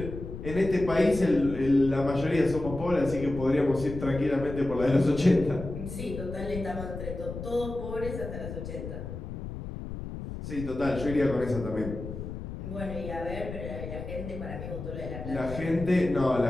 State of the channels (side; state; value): left; noise; rumble, 8 dB below the sound